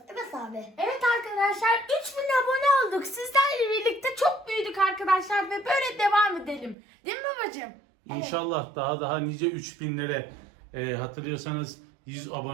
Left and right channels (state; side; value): drops out; left; at 6.8 s